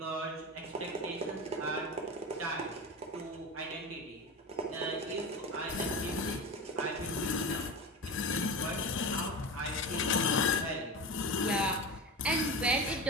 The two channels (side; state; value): both; normal; correlation 0.25